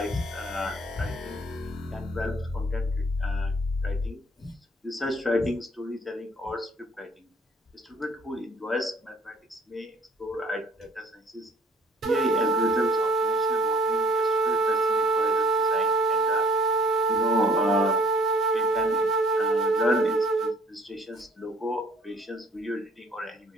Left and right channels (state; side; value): normal; both; correlation 0.55